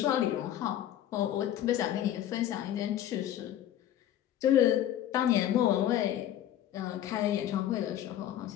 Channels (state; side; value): quieter; right; 11.7 dB